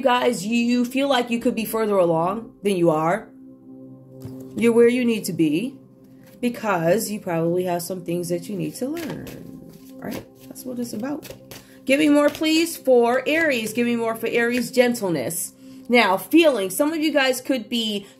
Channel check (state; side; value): identical; both; correlation 1.00